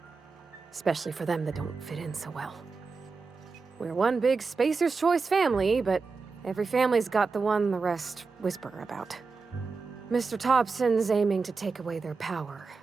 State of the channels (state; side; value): quieter; left; 4.5 dB